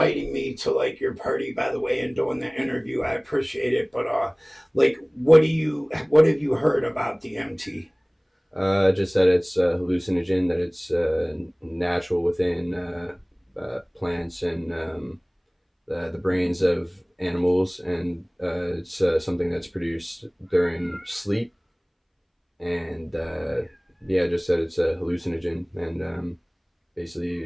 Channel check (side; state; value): both; identical; correlation 1.00